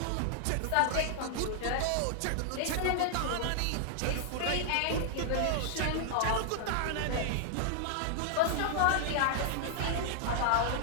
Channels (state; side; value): different; both; correlation 0.00